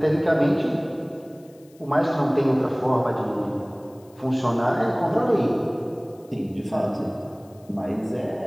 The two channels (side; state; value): left; noise; hiss, 30 dB below the sound